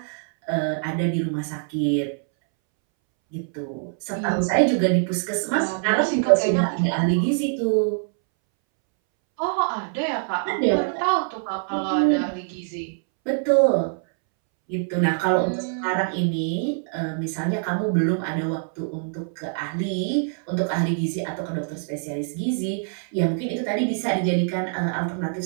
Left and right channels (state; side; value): silent; left; 62 dB below the other